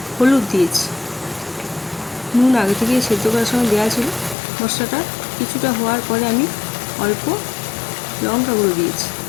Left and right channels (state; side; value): drops out; right; at 4.4 s